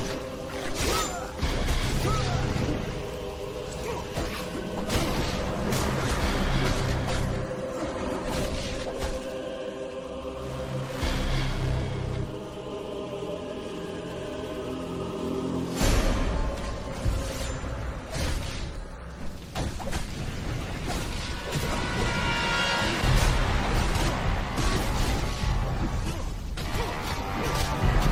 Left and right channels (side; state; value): both; identical; correlation 1.00